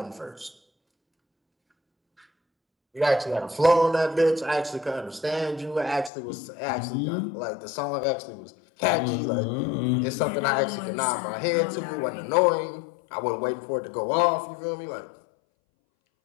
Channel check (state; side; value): drops out; right; at 6.1 s